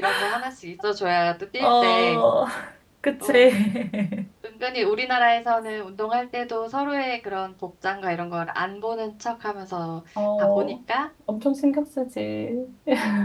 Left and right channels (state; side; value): identical; both; correlation 1.00